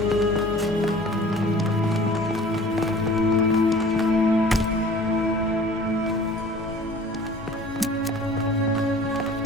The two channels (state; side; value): normal; both; correlation 0.47